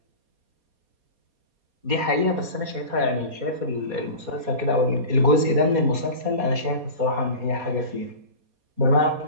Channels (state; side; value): late; left; 4.2 ms